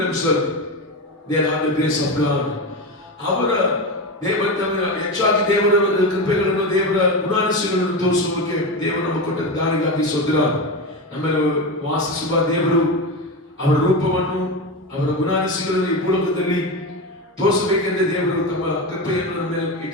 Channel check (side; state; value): both; normal; correlation 0.18